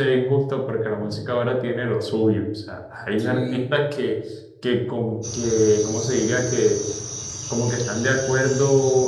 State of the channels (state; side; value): identical; both; correlation 1.00